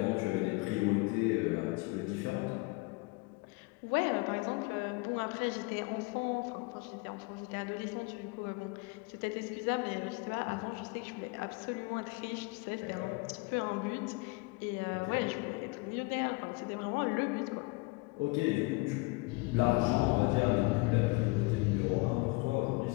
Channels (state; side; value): quieter; right; 25.9 dB